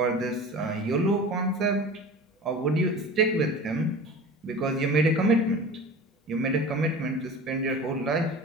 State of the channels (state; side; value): normal; both; correlation 0.37